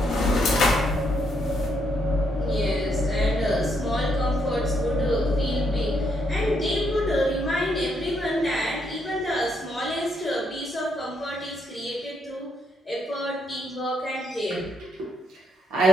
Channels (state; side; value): normal; both; correlation 0.75